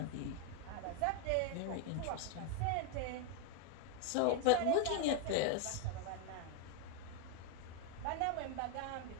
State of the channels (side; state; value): both; different; correlation 0.01